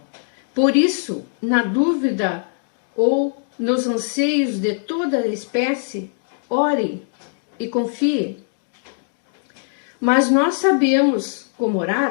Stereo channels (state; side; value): silent; right; digital silence